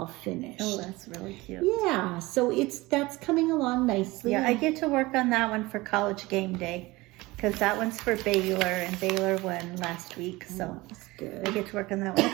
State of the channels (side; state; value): left; quieter; 21.0 dB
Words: finished. Oh, that's really cute. Yeah, so that's coming along nicely. Yeah, I get to work on that one for college game day, because that one's for Baylor, and Baylor won last week, so That's good. I get to work on that one.